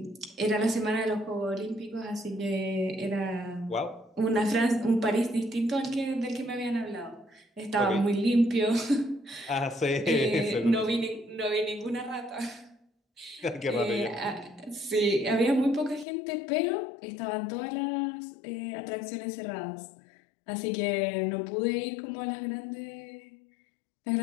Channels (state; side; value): drops out; right; at 16.1 s